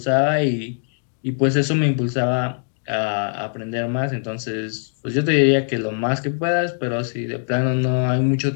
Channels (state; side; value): silent; right; digital silence